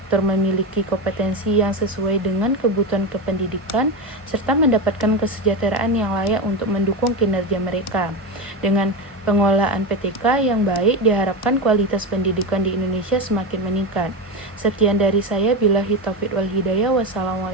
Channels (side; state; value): both; normal; correlation 0.17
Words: memiliki kompetensi yang sesuai dengan kebutuhan kependidikan serta mendapatkan kesejahteraan yang layak untuk mendukung kinerja mereka. Dengan pengelolaan PTK yang baik, diharapkan kualitas pendidikan di Indonesia semakin meningkat. Sekian dari saya, billahi taufiq wal hidayah.